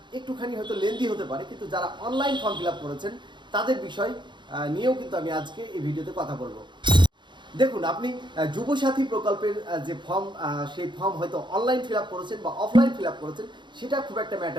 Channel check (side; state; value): left; late; 0.23 ms